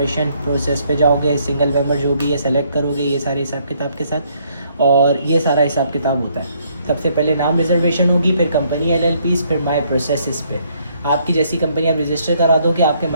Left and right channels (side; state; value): both; inverted; correlation -0.68